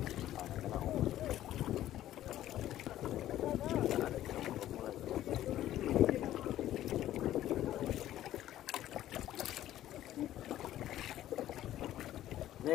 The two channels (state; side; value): quieter; right; 13.2 dB